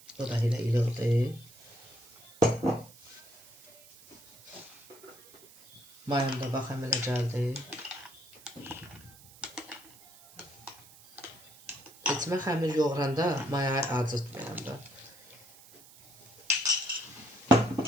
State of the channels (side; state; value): right; noise; hiss, 23 dB below the sound